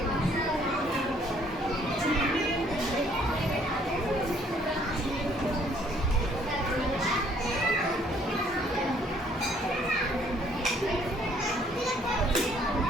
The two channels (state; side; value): normal; both; correlation 0.63